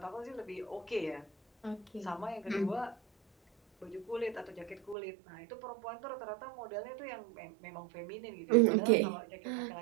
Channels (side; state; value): left; drops out; at 5.0 s